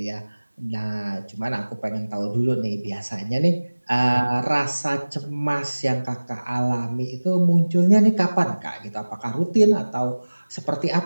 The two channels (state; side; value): inverted; both; correlation -1.00